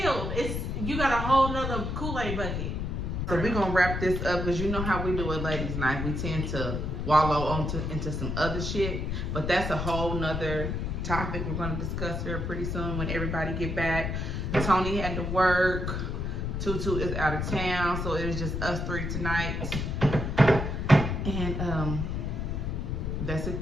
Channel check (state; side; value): noise; left; rumble, 2 dB below the sound